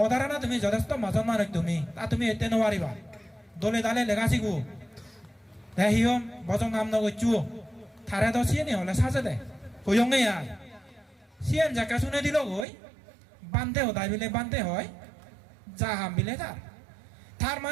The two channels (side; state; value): left; drops out; at 12.7 s